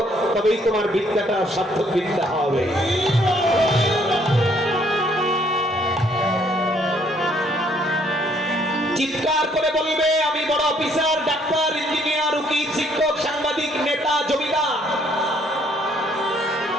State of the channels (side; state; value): both; normal; correlation 0.65